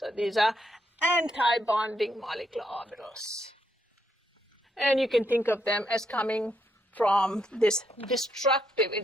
these are anti-bonding molecular orbitals. And you can think of them as coming from this destructive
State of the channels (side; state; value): both; normal; correlation 0.77